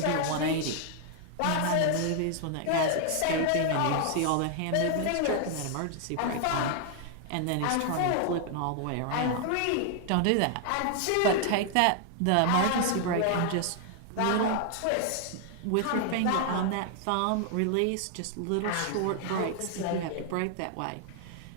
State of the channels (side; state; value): both; different; correlation 0.00